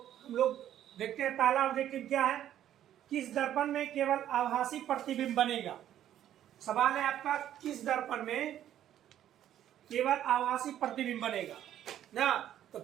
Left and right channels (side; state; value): left; quieter; 11.4 dB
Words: हम लोग देखते हैं पहला ऑब्जेक्टिव क्या है। किस दर्पण में केवल आभासी प्रतिबिंब बनेगा। सवाल है आपका, किस दर्पण में केवल आभासी प्रतिबिंब बनेगा ना। तो